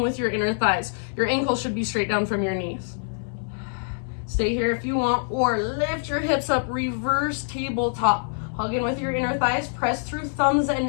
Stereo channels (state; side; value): silent; right; 62 dB below the other